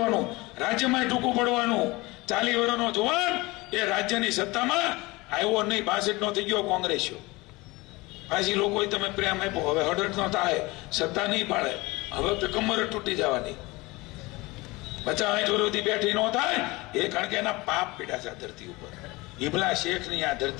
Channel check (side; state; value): right; quieter; 22.6 dB